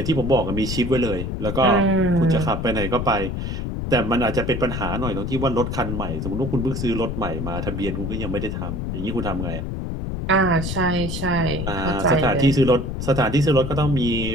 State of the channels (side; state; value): left; noise; rumble, 4 dB below the sound